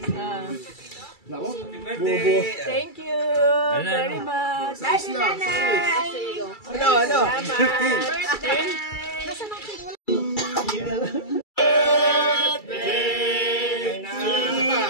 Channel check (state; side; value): late; right; 2.3 ms